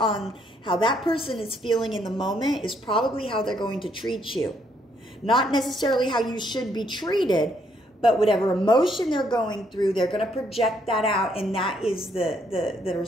how that person is feeling in the moment is probably how they're going to treat you. Not necessarily how you should be treated, but whatever emotion they're going through, they're going to project that out, and that is the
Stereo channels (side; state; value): both; normal; correlation 0.71